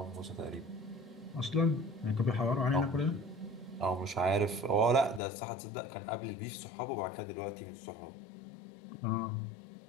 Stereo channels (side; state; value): right; drops out; at 5.2 s